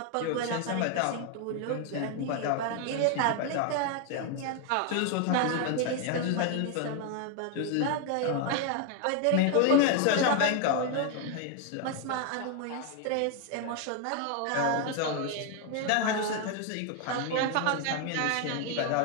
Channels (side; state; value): both; different; correlation 0.00